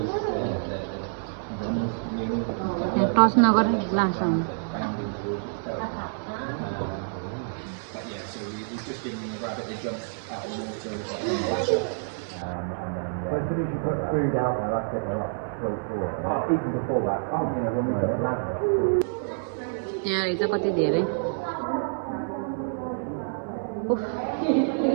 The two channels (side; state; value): left; silent; 60 dB below the other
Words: touch नगर लास आउनु यहाँ रहेछ कति धेरै